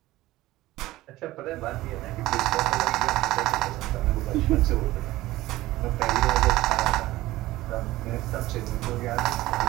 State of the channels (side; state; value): left; quieter; 17.2 dB